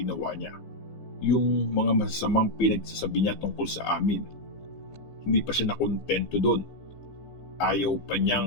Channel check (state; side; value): late; right; 15 ms